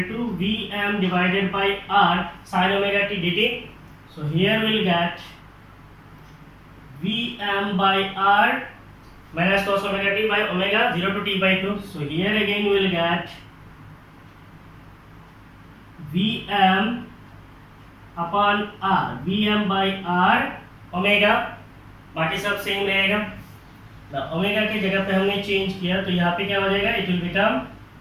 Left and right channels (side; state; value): both; identical; correlation 1.00